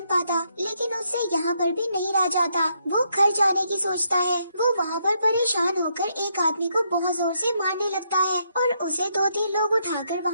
पाता। लेकिन उससे यहाँ पर भी नहीं रह जाता। वो घर जाने की सोचता है। वो वहाँ पर परेशान होकर एक आदमी को बहुत जोर से मारने लगता है और उसे 2-3 लोग उठाकर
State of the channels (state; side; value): inverted; both; correlation -0.76